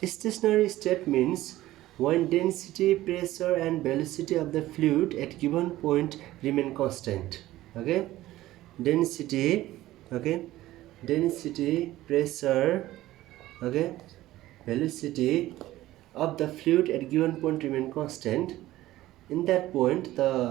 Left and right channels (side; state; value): left; quieter; 15.8 dB